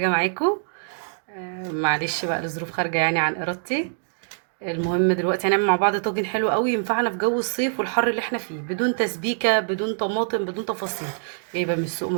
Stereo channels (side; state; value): left; silent; digital silence